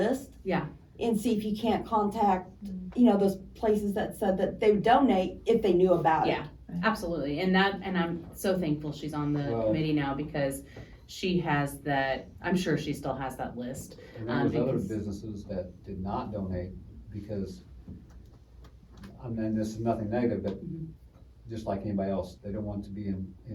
Yeah. And see if you can't contact, those places that said that they would donate if they knew about it. Yeah, absolutely, and I'm so thankful she's on the Well- committee now, because she has that, I'm sure she still has that list. And there was other because- businesses that did not donate because, this is nothing negative, but Mhm. just like anybody else, they don't want to be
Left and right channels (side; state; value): both; identical; correlation 1.00